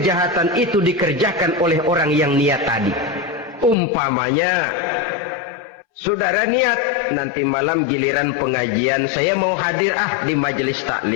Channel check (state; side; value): drops out; right; at 3.8 s